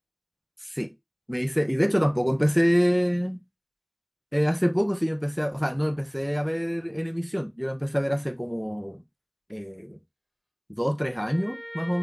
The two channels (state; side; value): identical; both; correlation 1.00